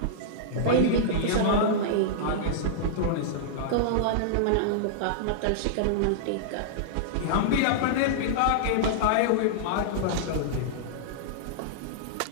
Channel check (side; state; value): both; different; correlation -0.02